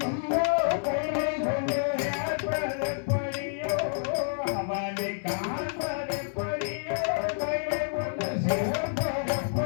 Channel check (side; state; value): right; silent; 59 dB below the other